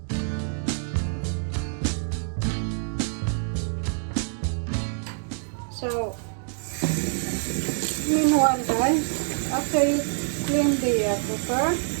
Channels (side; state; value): left; silent; digital silence